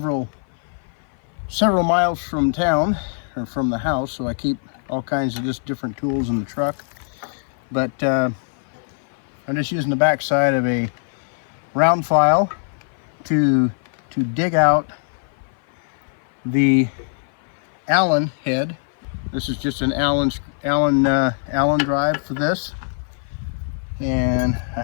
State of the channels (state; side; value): silent; right; 57 dB below the other